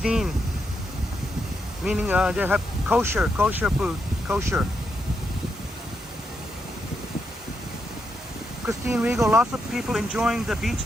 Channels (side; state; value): both; normal; correlation 0.82